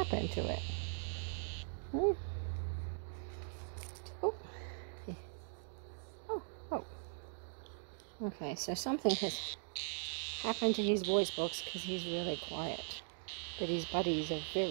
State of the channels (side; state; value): left; silent; digital silence